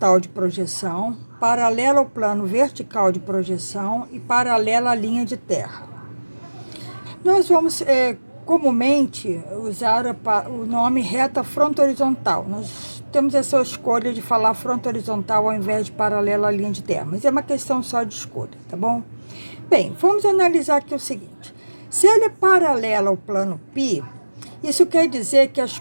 de projeção, paralela ao plano vertical de projeção e paralela à linha de terra. Nós vamos comumente usar o nome reta fronto-horizontal. Nós temos essa escolha de falar fronto-horizontal ao invés de paralela à linha de terra, mas é uma questão só de escolha, tá bom? Bem, vamos analisar aqui o seguinte. Se ele é paralelo ao plano π, isso quer dizer que as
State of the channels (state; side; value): inverted; both; correlation -1.00